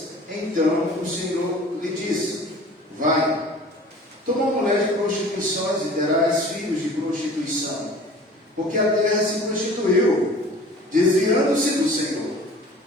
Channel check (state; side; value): normal; both; correlation 0.45